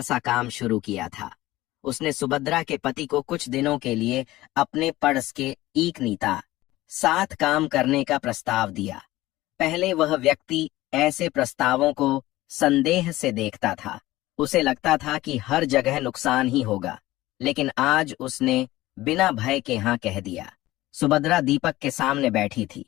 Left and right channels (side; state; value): right; quieter; 17.3 dB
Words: काम शुरू किया था। उसने सुभद्रा के पति को कुछ दिनों के लिए अपने पड़स के एक नीता साथ काम करने का प्रस्ताव दिया। पहले वह व्यक्ति ऐसे प्रस्तावों को संदेह से देखता था। उसे लगता था कि हर जगह नुकसान ही होगा, लेकिन आज उसने बिना भय के हाँ कह दिया। सुभद्रा दीपक के सामने बैठी थी।